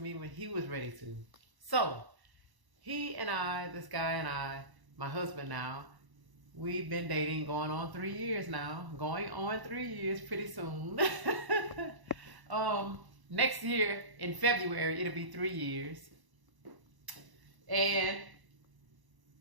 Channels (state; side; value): late; left; 1.0 ms